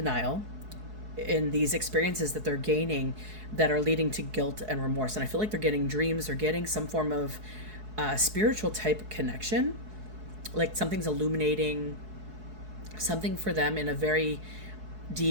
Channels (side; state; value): left; late; 4.7 ms